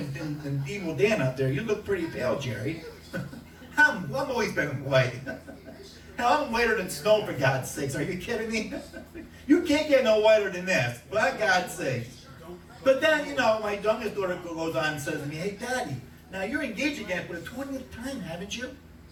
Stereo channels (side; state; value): both; identical; correlation 1.00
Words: Evil Dan out there. You look pretty pale, Jerry. I'm always been white. Hell, I'm whiter than snow, for God's sakes. Are you kidding me? You can't get no whiter than this, for God's sakes. But then, you know, my youngest daughter goes on and says to me, hey, Daddy, now you're engaged again for the 20th time, haven't you?